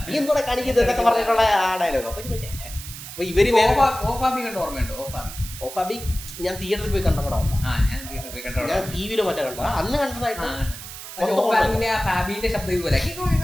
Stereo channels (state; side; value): noise; right; hiss, 12 dB below the sound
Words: നീ എന്തോടെ കാണിക്കുന്നത് എന്നൊക്കെ പറഞ്ഞിട്ടുള്ള ആ ഡയലോഗ്. അപ്പൊ ഇവര് ഓർമ്മയുണ്ടോ? ഓഫാബി ഞാൻ തിയേറ്ററിൽ പോയി കണ്ട പടം, ഞാൻ ടിവിയിലോ മറ്റേ കണ്ട, അന്ന് കണ്ടതായിട്ട്